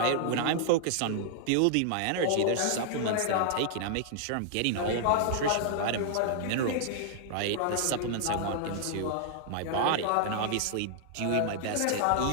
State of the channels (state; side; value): different; both; correlation -0.01